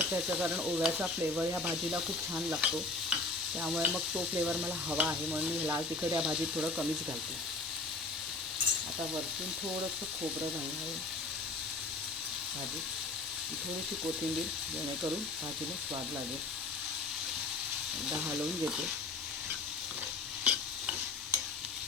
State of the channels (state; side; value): quieter; right; 3.4 dB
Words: याचं कारण ओव्याचा फ्लेवर ह्या भाजीला खूप छान लागतो, त्यामुळे मग तो फ्लेवर मला हवा आहे म्हणून मी लाल तिखट या भाजीत थोडं कमीच घालते। आता वरतून थोडंसं खोबरं घालणार आहे भाजीत, थोडीशी कोथिंबीर, जेणेकरून भाजीला स्वाद लागेल। एकदा हलवून घेते